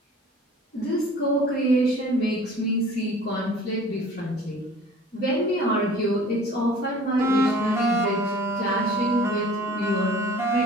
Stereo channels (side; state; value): both; normal; correlation 0.47